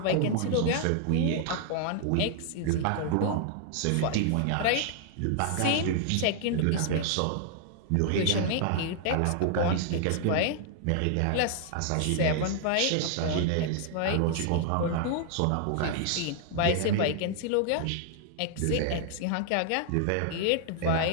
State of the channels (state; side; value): different; both; correlation 0.00